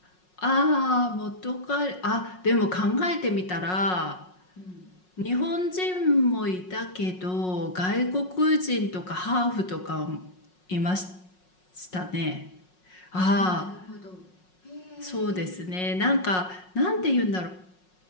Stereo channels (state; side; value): late; right; 5.5 ms